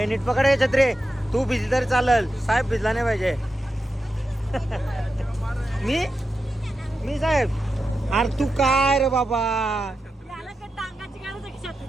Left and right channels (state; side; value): normal; both; correlation 0.89